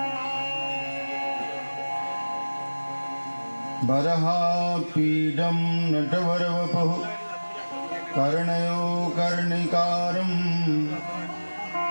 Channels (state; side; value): inverted; both; correlation -1.00